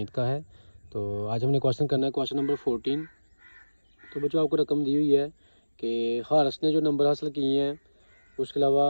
का है। तो आज हमने क्वेश्चन करना है क्वेश्चन नंबर 14। तो बच्चों, आपको रकम दी हुई है कि हारस ने जो नंबर हासिल किए हैं, उसके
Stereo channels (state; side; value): inverted; both; correlation -1.00